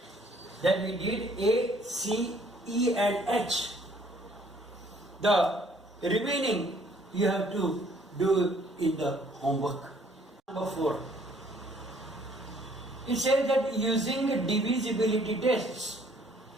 Then we did A, C, E and H. The remaining you have to do in the homework. Number 4. It says that using divisibility tests,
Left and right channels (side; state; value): both; normal; correlation 0.61